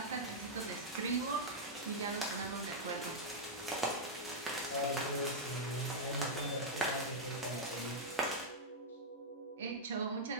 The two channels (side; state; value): both; normal; correlation -0.05